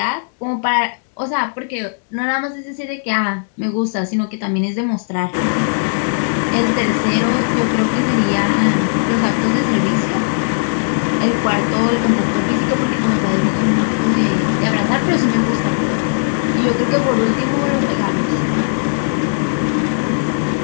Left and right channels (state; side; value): silent; right; digital silence